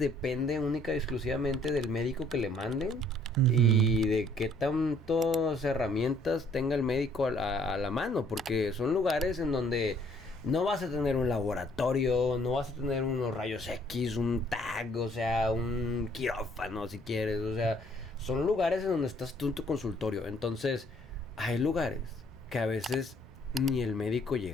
única y exclusivamente del médico que le manden. Y de qué tantas herramientas tenga el médico a la mano, porque son lugares en donde no vas a tener un laboratorio, no vas a tener unos rayos X, un TAC, o sea, un quirófano si quieres, o sea, son lugares en donde estás tú en tu consultorio. Entonces, hay lugares que a veces ni el médico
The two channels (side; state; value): both; normal; correlation 0.62